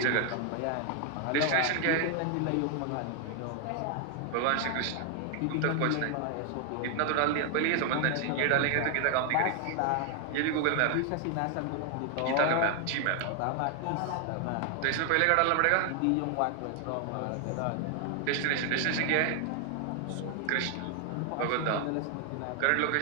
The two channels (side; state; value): both; different; correlation 0.00